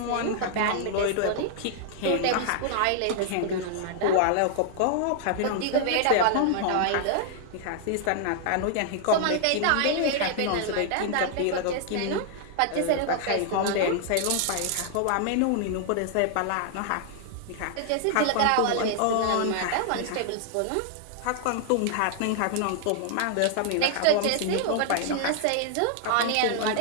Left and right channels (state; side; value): different; both; correlation -0.01